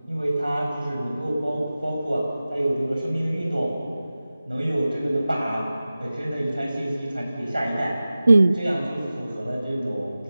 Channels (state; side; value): inverted; both; correlation -0.96